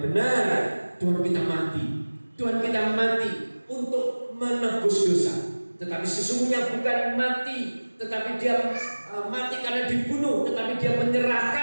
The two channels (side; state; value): both; inverted; correlation -1.00